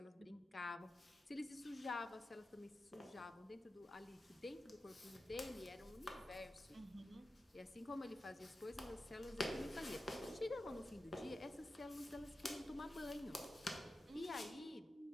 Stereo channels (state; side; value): normal; both; correlation 0.92